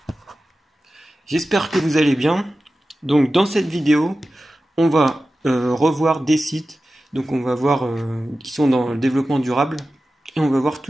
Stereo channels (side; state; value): both; normal; correlation 0.94